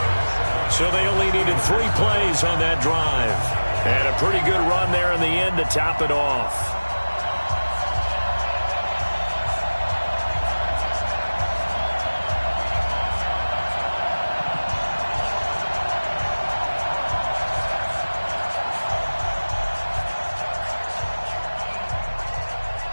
So they only needed 3 plays on that drive. And a pretty good run there in the end to top it off.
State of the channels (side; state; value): both; inverted; correlation -1.00